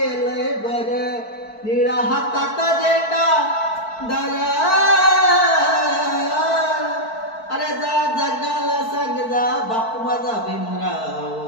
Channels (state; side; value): late; right; 4.5 ms